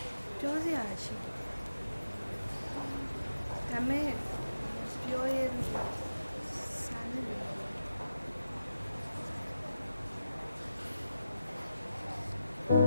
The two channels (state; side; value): inverted; both; correlation -0.90